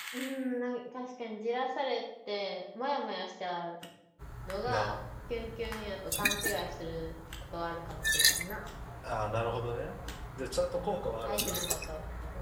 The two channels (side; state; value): both; identical; correlation 1.00